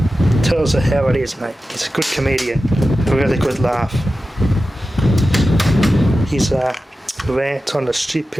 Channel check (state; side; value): normal; both; correlation 0.93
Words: Tells her how it is, mate. He's a good comedian, a really good laugh. His rant on the